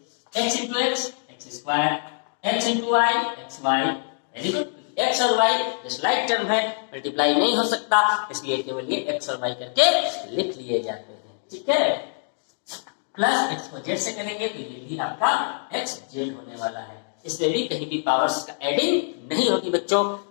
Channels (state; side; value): silent; right; digital silence